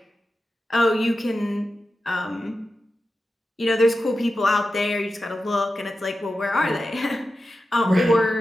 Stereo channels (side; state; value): both; normal; correlation 0.91